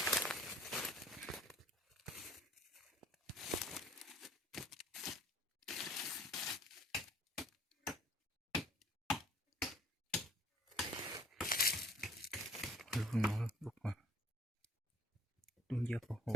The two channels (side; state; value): both; normal; correlation 0.55